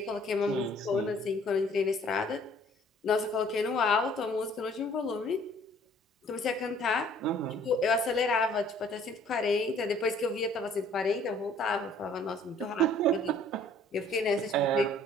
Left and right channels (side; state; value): both; normal; correlation 0.57